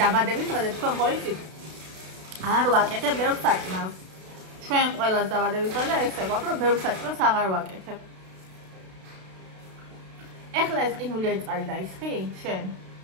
დაბადების დღეზე თქვენ ხო იცით არ ვაკეთებ ბევრ საჭმელს ჩვენ ყველას დაბადების დღეზე ესე გვაქვს რომ ბევრ საჭმელს აღარ ვაკეთებ ეხლა ეს ყინულიანი წყალი დაისხი შენ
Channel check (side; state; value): left; late; 32 ms